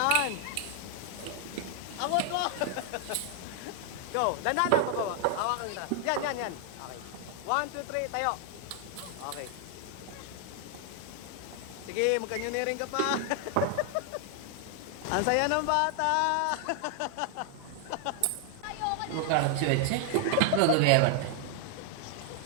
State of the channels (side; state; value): both; different; correlation 0.00